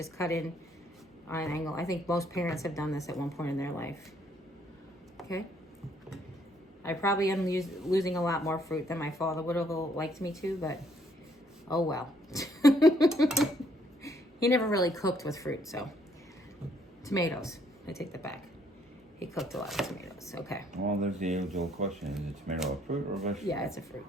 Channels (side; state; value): both; normal; correlation 0.67